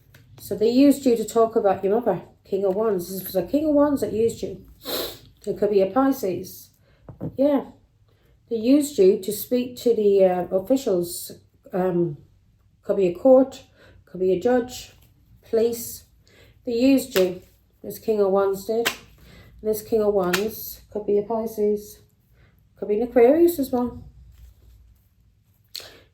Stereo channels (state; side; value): identical; both; correlation 1.00